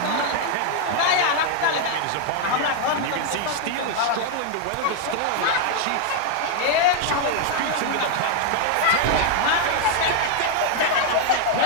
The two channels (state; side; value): different; both; correlation 0.00